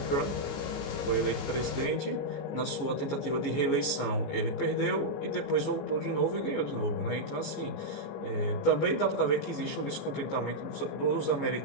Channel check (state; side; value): late; right; 15 ms